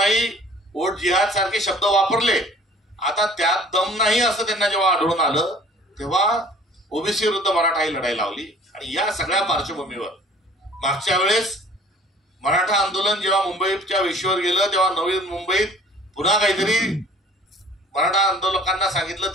वोट जिहाद सारखे शब्द वापरले. आता त्यात दम नाही असं त्यांना जेव्हा आढळून आलं तेव्हा ओबीसी विरुद्ध मराठा ही लढाई लावली. आणि या सगळ्या पार्श्वभूमीवर मागच्या वेळेस मराठा आंदोलन जेव्हा मुंबईच्या वेशीवर गेलं तेव्हा नवी मुंबईत पुन्हा काहीतरी मराठा आंदोलकांना सांगितलं.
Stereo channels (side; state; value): both; normal; correlation 0.51